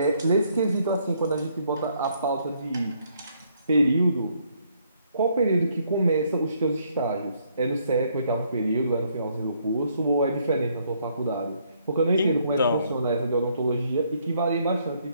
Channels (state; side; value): inverted; both; correlation -0.70